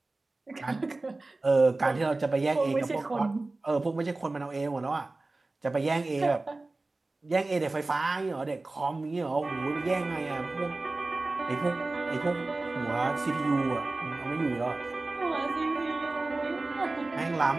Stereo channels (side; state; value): left; quieter; 3.2 dB